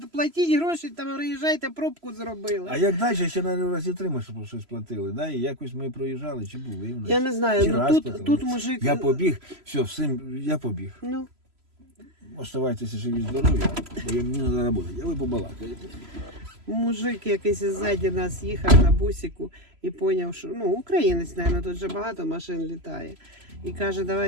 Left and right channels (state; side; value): late; left; 3.0 ms